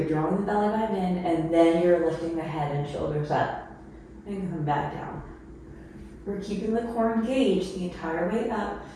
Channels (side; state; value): both; identical; correlation 1.00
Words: drawing the belly button in, and then you're lifting the head and shoulders up, and come back down. We're keeping the core engaged the entire way up